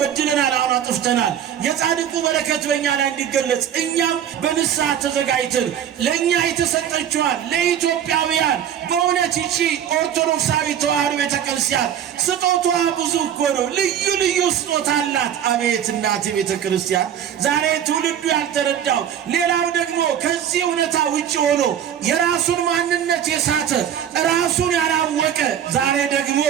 አሁን አጥፍተናል። የጻድቁ በረከት በእኛ ላይ እንዲገለጽ እኛም በንስሐ ተዘጋጅተን ለእኛ የተሰጠችዋን ለኢትዮጵያውያን በእውነት ይቺ ኦርቶዶክሳዊ ተዋሕዶ ቤተክርስቲያን ስጦቷ ብዙ እኮ ነው። ልዩ ልዩ ስጦታ አላት። አቤት እናት ቤተክርስቲያን ዛሬ ትውልዱ ያልተረዳው ሌላው ደግሞ ከዚህ እውነታ ውጭ ሆኖ የራሱን ማንነት የሳተ ራሱን ያላወቀ ዛሬ ደግሞ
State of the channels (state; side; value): quieter; left; 9.5 dB